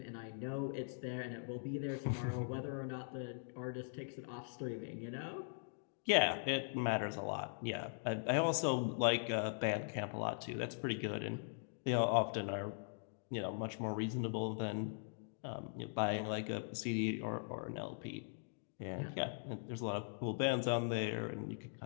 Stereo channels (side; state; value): right; silent; digital silence